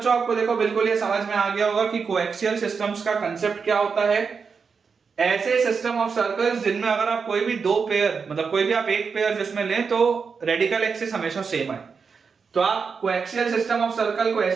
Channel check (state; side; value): quieter; left; 5.5 dB